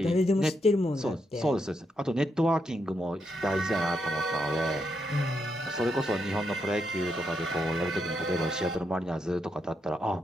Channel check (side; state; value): both; normal; correlation 0.81